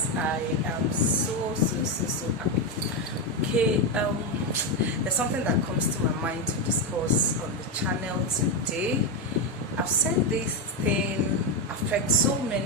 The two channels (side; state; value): both; normal; correlation 0.07